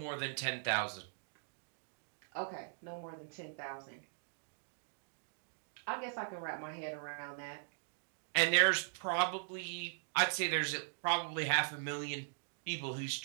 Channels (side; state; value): left; silent; digital silence